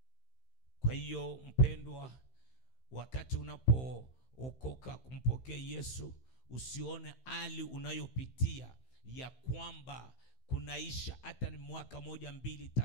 Kwa hiyo mpendwa, wakati unapookoka kumpokea Yesu, usione hali unayopitia ya kwamba kunaisha hata ni mwaka 1, 2,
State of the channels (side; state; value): right; late; 15 ms